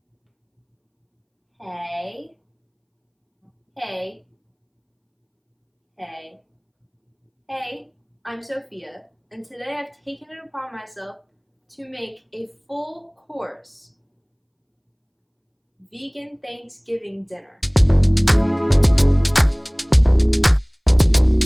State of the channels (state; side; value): identical; both; correlation 1.00